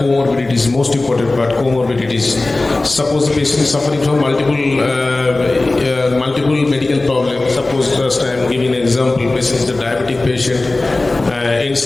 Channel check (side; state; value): right; quieter; 3.1 dB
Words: comorbidities, most important part, comorbidities. Suppose the patient is suffering from multiple medical problems. Suppose just I am giving an example, patient is a diabetic patient,